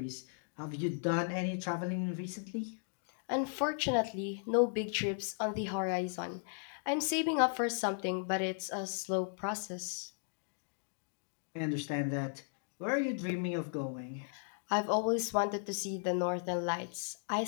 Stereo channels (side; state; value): right; silent; digital silence